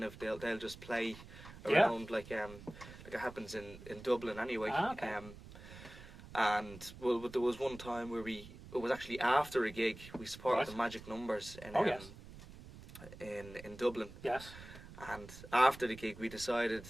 just play around like it happens in Dublin anyway. Okay. And there was one time where it was actually after a gig we supported the Magic Numbers in Dublin. Yes. And after the gig, we decided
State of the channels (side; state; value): right; noise; rumble, 16 dB below the sound